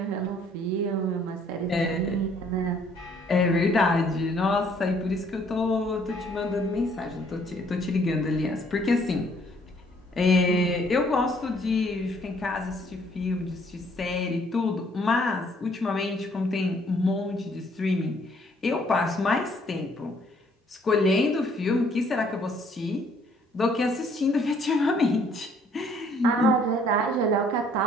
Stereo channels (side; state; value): both; normal; correlation 0.63